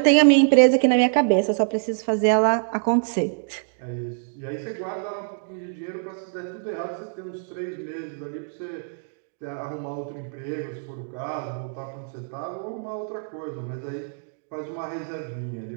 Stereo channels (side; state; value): left; silent; digital silence